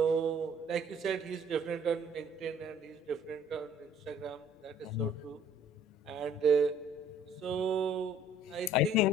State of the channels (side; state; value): both; normal; correlation 0.57